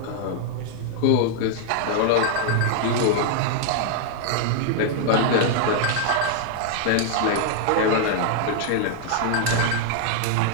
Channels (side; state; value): both; different; correlation -0.01